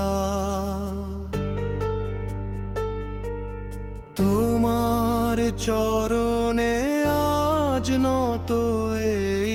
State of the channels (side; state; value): both; identical; correlation 1.00